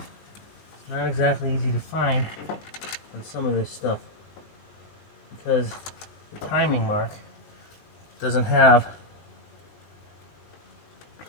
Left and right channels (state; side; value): late; right; 20 ms